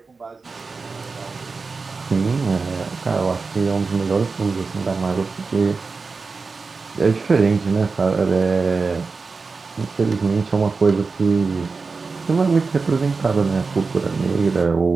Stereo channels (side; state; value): left; quieter; 4.4 dB